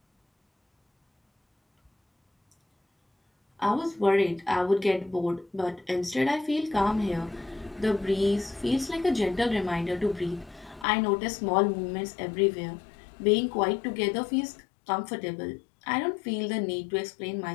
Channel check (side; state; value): right; drops out; at 10.9 s